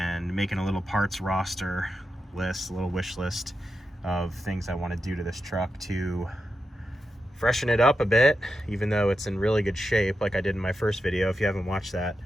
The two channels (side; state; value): both; normal; correlation 0.88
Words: making a little parts roster list, a little wish list of things I want to do to this truck to freshen it up a bit, even though it's in really good shape, like I did in my first video. If you haven't watched that,